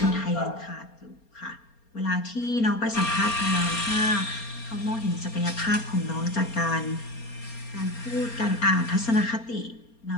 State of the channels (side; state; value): right; late; 4.3 ms